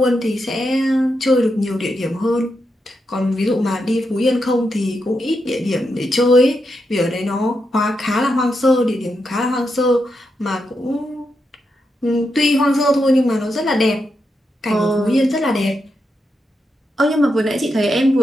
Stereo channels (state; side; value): normal; both; correlation 0.84